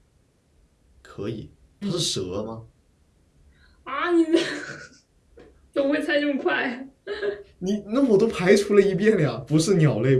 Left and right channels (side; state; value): both; identical; correlation 1.00